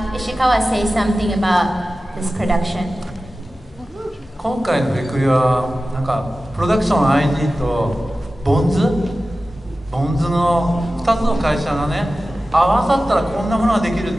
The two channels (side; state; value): both; normal; correlation 0.95